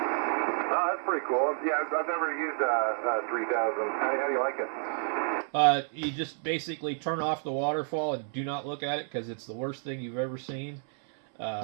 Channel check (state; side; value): silent; left; 58 dB below the other